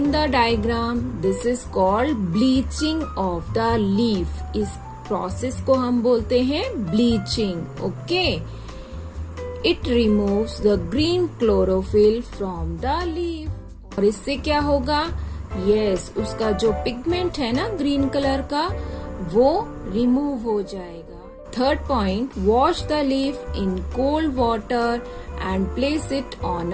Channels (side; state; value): both; identical; correlation 1.00